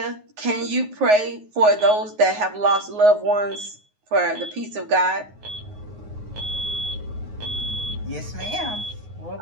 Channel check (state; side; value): late; left; 9.5 ms